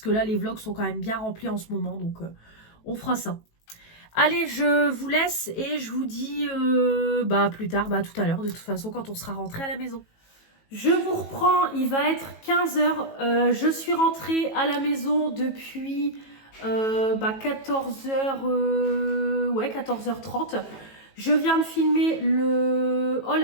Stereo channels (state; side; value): late; right; 18 ms